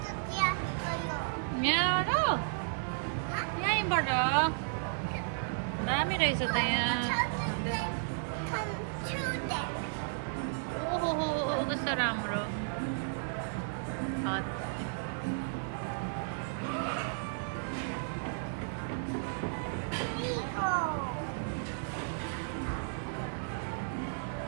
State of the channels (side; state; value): left; silent; 55 dB below the other